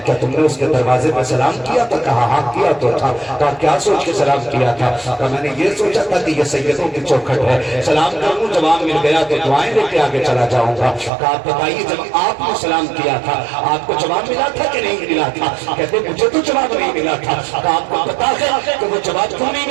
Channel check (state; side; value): drops out; left; at 11.1 s